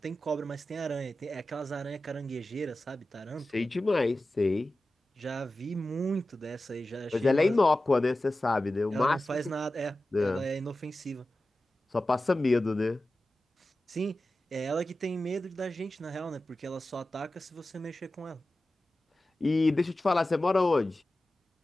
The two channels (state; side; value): normal; both; correlation 0.94